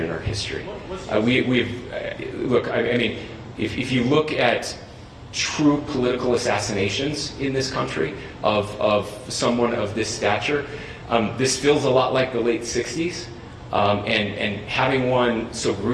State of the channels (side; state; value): both; identical; correlation 1.00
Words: in our history? Look, I mean, if you look at true political assassinations in this country of someone of this stature, this feels a lot like the late 60s. And having one so